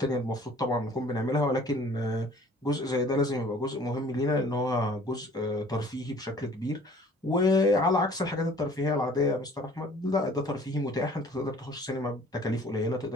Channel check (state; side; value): normal; both; correlation 0.51